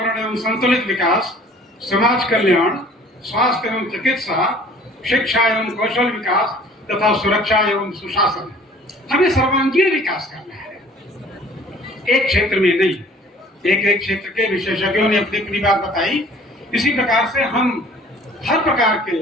एवं संतुलित विकास, समाज कल्याण, स्वास्थ्य एवं चिकित्सा, शिक्षा एवं कौशल विकास तथा सुरक्षा एवं सुशासन। हमें सर्वांगीण विकास करना है, एक क्षेत्र में नहीं। एक क्षेत्र के विशेषज्ञों ने अपनी अपनी बात बताई। इसी प्रकार से हम हर प्रकार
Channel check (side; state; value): both; normal; correlation 0.51